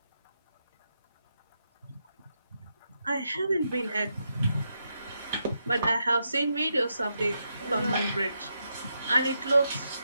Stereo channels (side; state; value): both; inverted; correlation -0.83